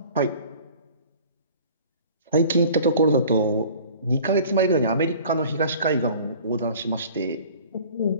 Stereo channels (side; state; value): both; inverted; correlation -0.47